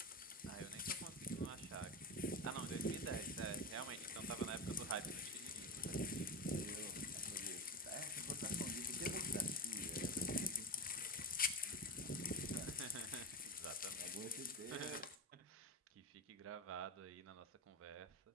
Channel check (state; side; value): normal; both; correlation 0.18